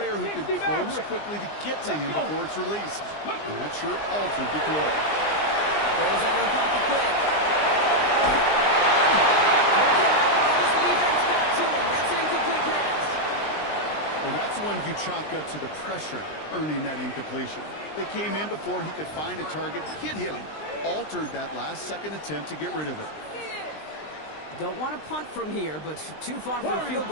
who can close quickly to get to him before it's released. And that sure altered the throw. Throws out of the pocket quick. The defense back to him. That's an incomplete pass. Well, that's one you chalk up to the pressure earning that incompletion. They came in before he could find a target, hit him. Altered that last-second attempt to get rid of it. Don't want to punt from here, but too far for a field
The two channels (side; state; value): right; late; 20 ms